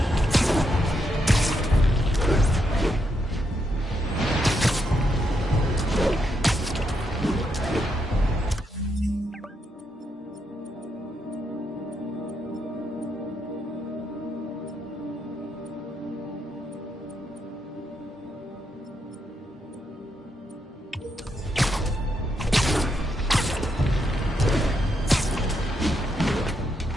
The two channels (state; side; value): normal; both; correlation 0.80